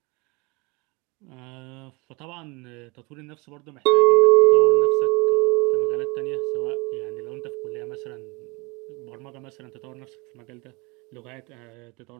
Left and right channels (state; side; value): quieter; left; 27.5 dB